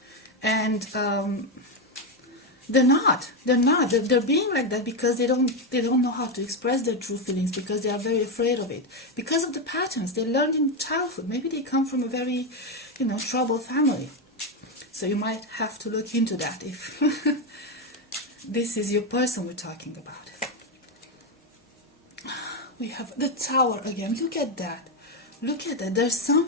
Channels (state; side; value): normal; both; correlation 0.08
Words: And they're not. They're being like that because they don't know how to express their true feelings, because they are very afraid of it. Because of the patterns they learned in childhood. Maybe they come from a very, troubled family. So you might have to look into that if this is your person we're talking about. We have the Tower again. Look at that. Look at that. There's